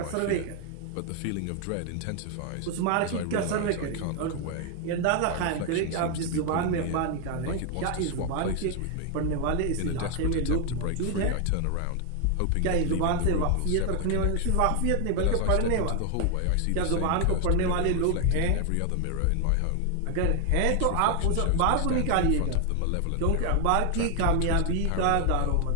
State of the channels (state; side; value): different; both; correlation 0.00